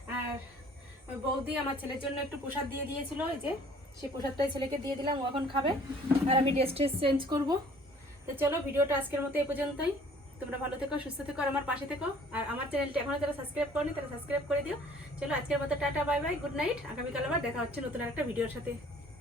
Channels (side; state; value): both; normal; correlation 0.54